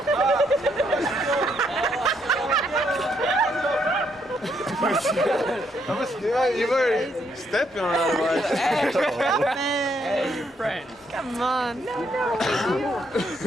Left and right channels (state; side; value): normal; both; correlation 0.74